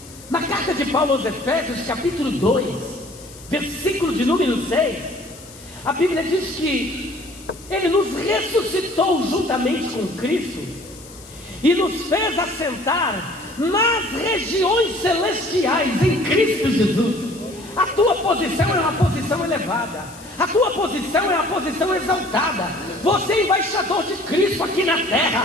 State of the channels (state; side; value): noise; left; hiss, 20 dB below the sound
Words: Na carta de Paulo aos Efésios, capítulo 2, versículo de número 6, a Bíblia diz que Ele nos ressuscitou juntamente com Cristo e nos fez assentar nas regiões celestiais em Cristo Jesus. A tua posição é uma posição elevada. A tua posição é uma posição exaltada. Você é embaixador de Cristo aqui na terra.